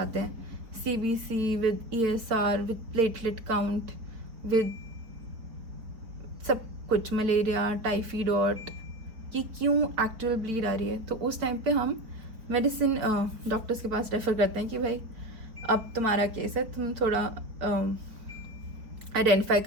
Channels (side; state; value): left; late; 4.4 ms